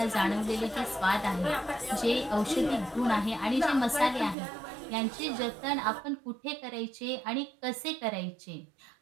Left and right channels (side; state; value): left; drops out; at 4.4 s